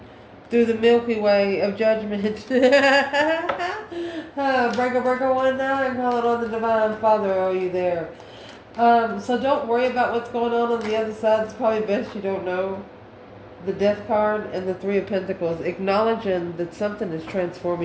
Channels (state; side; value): identical; both; correlation 1.00